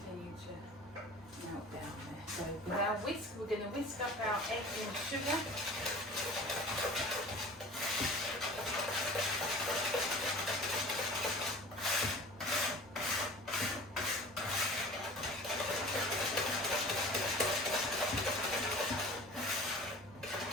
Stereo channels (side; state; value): both; normal; correlation 0.42